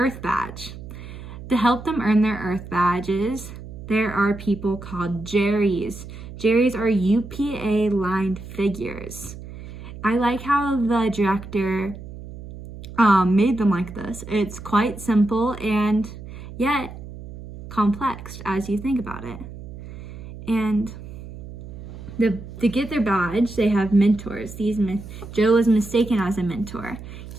badge. To help them earn their Earth badges, there are people called Jerrys. Jerrys are UPA-lined figures. I like how the director made them like this. It's quite simple and yet complex as you think about it. And to get their badge, they have mentors. Joe was mistaken as a mentor.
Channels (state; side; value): noise; right; hum, 13 dB below the sound